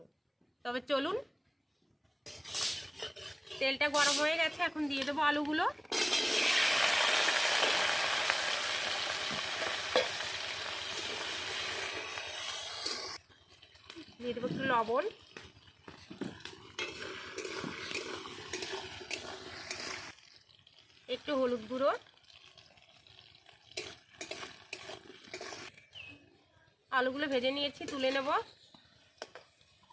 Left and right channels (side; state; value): both; identical; correlation 1.00